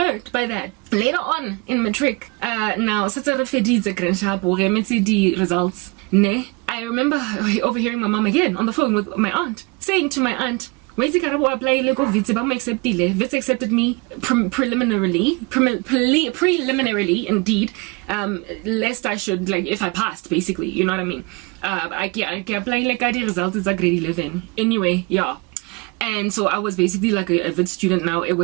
by that. Later on in matric, now, results, I remember overhearing my mom again on the phone with my aunt, saying to my aunt, Wits accepted me preliminarily, indeed, lest I should, like, if I passed, basically, you know what I mean? I apply like the results is a grade 11. Anyway, yeah. And so I was basically like a Wits student now. It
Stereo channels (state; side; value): quieter; left; 27.3 dB